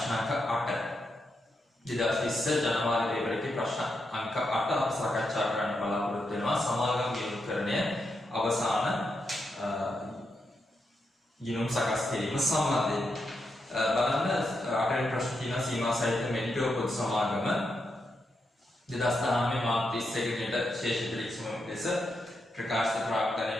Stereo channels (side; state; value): both; normal; correlation 0.84